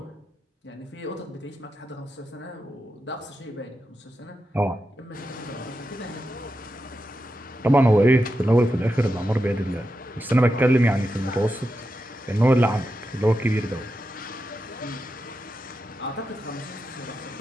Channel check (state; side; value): normal; both; correlation 0.88